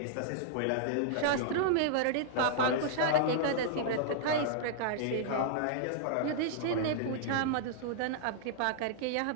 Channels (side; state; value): both; different; correlation -0.01